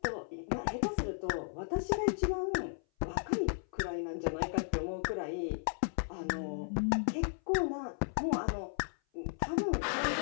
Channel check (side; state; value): right; silent; 55 dB below the other